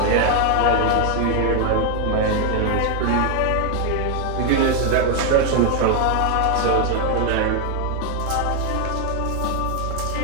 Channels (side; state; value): both; different; correlation 0.00